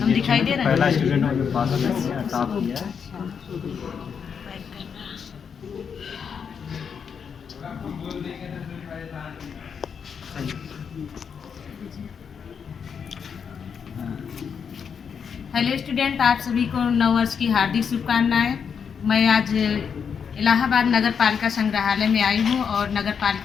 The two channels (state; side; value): quieter; right; 6.8 dB